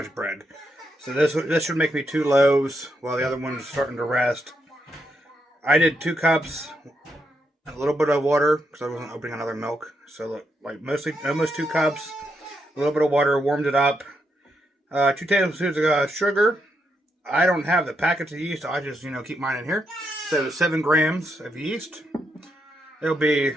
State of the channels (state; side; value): normal; both; correlation 0.81